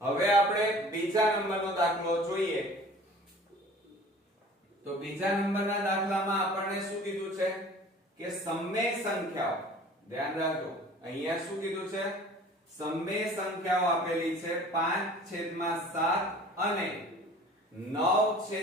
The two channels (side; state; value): both; normal; correlation 0.46